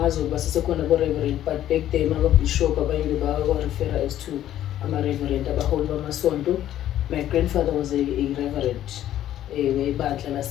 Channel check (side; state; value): right; quieter; 12.1 dB